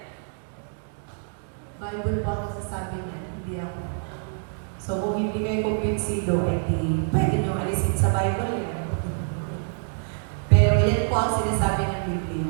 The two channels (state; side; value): silent; left; 61 dB below the other